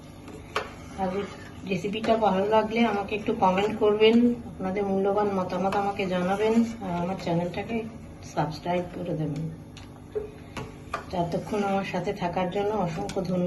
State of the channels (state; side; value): identical; both; correlation 1.00